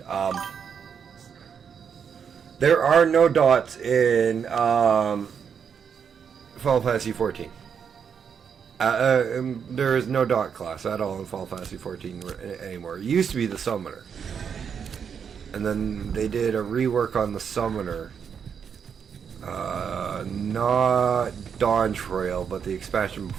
There are no dots in Final Fantasy 14. There is no dot class at all in Final Fantasy 14 anymore. It used to be the summoner, and then they did a rework on the summoner. Not Dawn Trail, but the expansion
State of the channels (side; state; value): left; quieter; 7.1 dB